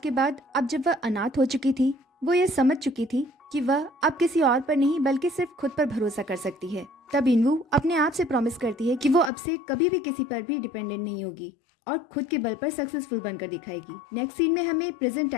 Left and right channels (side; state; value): right; drops out; at 9.3 s